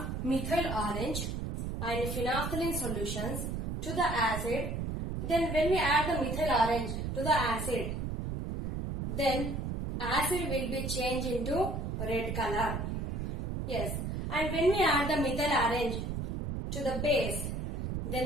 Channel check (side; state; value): right; noise; rumble, 3 dB below the sound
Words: methyl orange and phenolphthalein solutions to the acid, then when we add the methyl orange to the acid, then acid will be changed into red color. Yes, and when we add the methyl orange to the base,